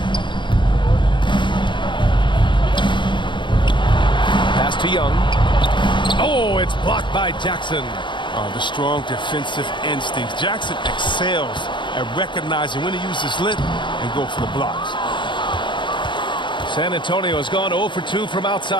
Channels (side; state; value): right; late; 0.23 ms